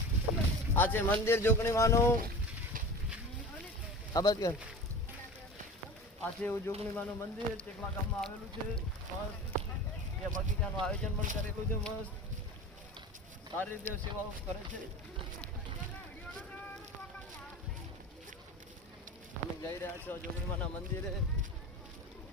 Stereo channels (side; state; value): both; normal; correlation 0.35